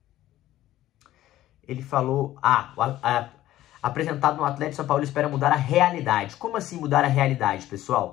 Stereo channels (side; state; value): right; quieter; 14.3 dB